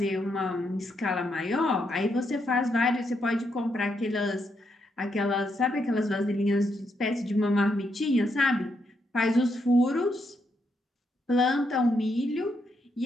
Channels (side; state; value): both; normal; correlation 0.79